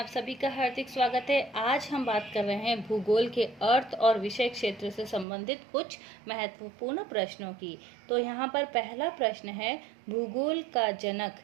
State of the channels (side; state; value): left; drops out; at 5.2 s